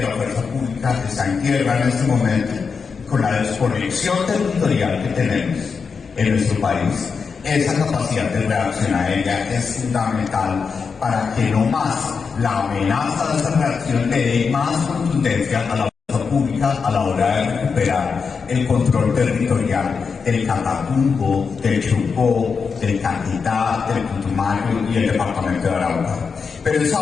la fuerza pública está en tierra en este momento. Con la desconexión territorial que tenemos en nuestro país, esa capacidad de reacción aérea es fundamental para que no más la amenaza de esa reacción le dé más contundencia a la pública a la hora de recuperar el control territorial del Catatumbo, del Chocó, del Caquetá, del Putumayo y el departamento de Arauca. Pero esa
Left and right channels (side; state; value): right; quieter; 5.5 dB